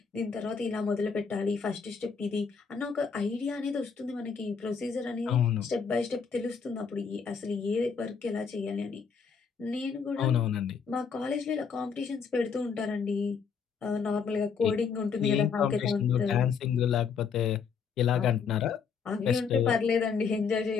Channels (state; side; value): quieter; right; 6.0 dB